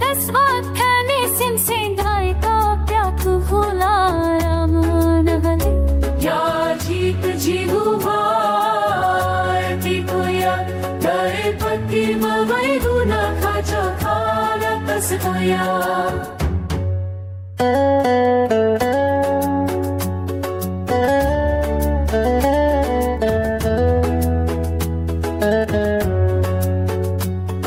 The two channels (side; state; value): both; identical; correlation 1.00